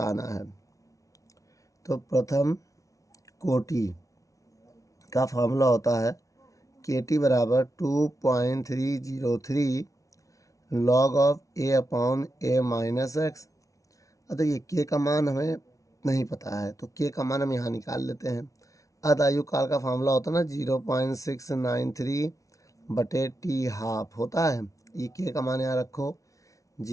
है। तो प्रथम कोटि का फार्मूला होता है KT बराबर 2.303 log of A/A minus x. अब ये K का मान हमें नहीं पता है तो K का मान हम यहाँ निकाल लेते हैं। अर्ध आयु काल का फार्मूला होता है ना 0.693/T हाफ होता है। ये K का मान यहाँ रखो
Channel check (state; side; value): late; right; 0.16 ms